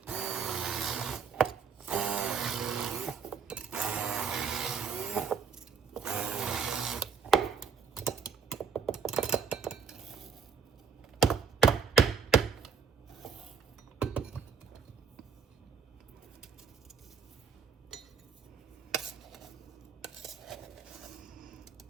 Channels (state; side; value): quieter; left; 6.4 dB